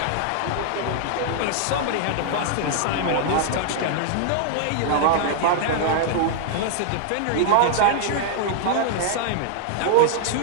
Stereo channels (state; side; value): different; both; correlation -0.01